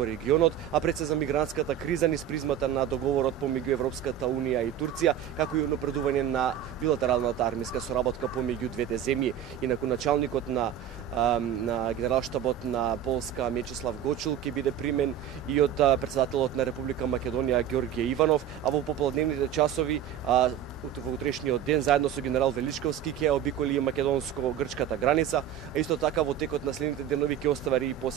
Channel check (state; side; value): quieter; left; 10.0 dB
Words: регионот, а пред се за мигрантската криза низ призмата на договорот помеѓу Европската унија и Турција, како и напредување на билатералната армиска соработка помеѓу двете земји. Инаку началникот на Генералштабот на Полска Миечеслав Гочул ќе биде примен и од председателот на Република Македонија Ѓорѓе Иванов, а во пополдневните часови во утрешниот ден заедно со генерал Величковски ќе обиколи македонско-грчката граница, а исто така во текот на следните денови ќе остави и